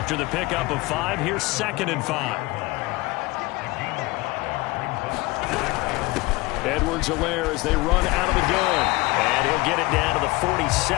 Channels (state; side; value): quieter; right; 21.9 dB